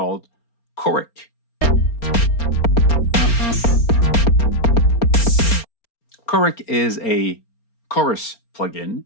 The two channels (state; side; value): late; right; 4.3 ms